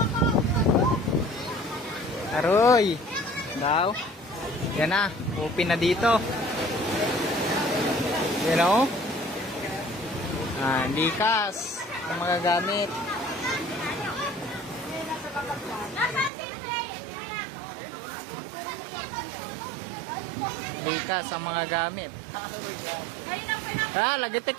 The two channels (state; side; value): drops out; left; at 16.3 s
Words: Aroy! Daw. Yan na, open na dito. You know? Likas ang mga gamit. Likas ang mga gamit. Lagitik